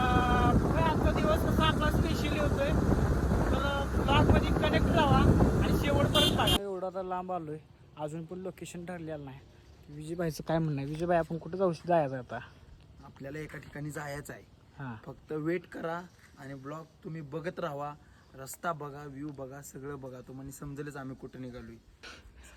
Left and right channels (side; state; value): both; identical; correlation 1.00